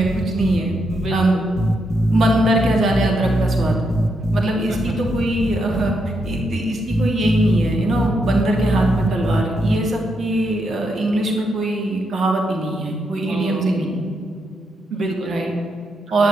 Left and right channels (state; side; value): normal; both; correlation 0.80